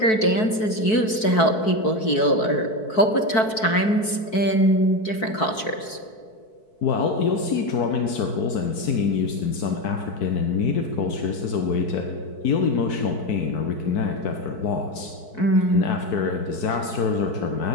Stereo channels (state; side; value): late; right; 4.6 ms